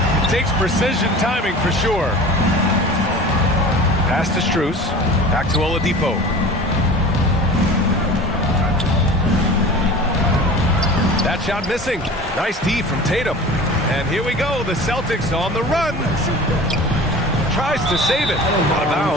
Takes precision timing for sure. Pass to Strus. Back to Oladipo. That shot missing. Nice D from Tatum. And here we go. The Celtics on the run. Tries to save it. Out of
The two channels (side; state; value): both; normal; correlation 0.38